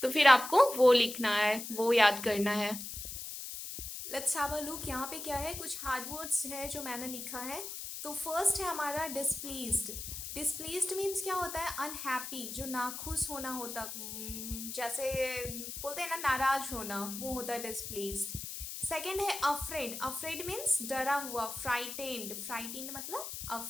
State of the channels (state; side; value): noise; left; hiss, 8 dB below the sound